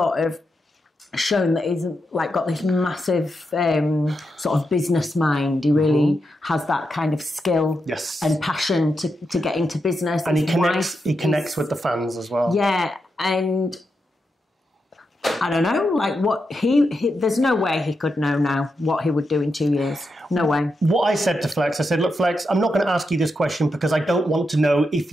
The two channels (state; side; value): normal; both; correlation 0.85